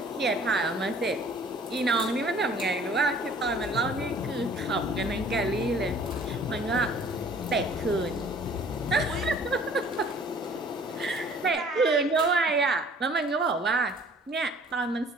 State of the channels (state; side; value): normal; both; correlation 0.53